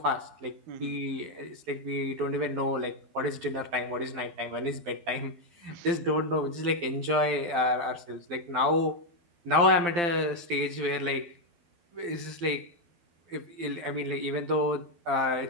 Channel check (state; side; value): late; left; 12 ms